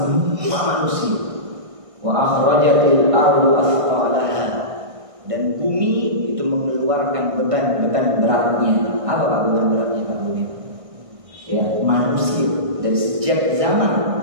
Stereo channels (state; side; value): late; left; 1.6 ms